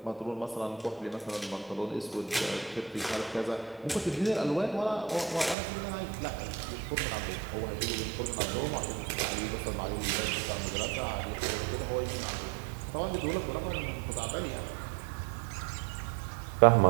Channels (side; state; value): left; drops out; at 5.6 s